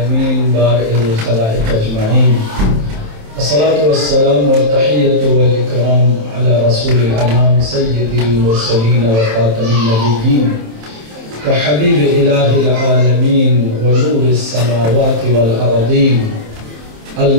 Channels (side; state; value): left; late; 27 ms